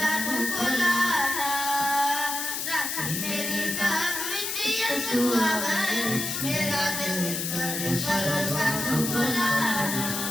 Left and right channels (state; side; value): noise; left; hiss, 2 dB below the sound